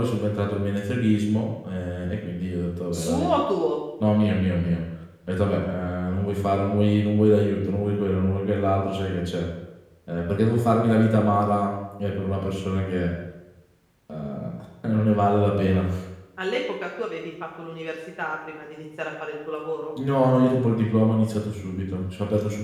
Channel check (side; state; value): both; identical; correlation 1.00